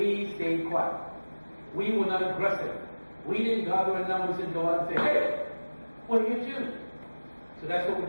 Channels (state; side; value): inverted; both; correlation -1.00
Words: stayed quiet. We were not aggressive. We didn't gather in numbers and go out and say, hey, what are you doing? So that's what we're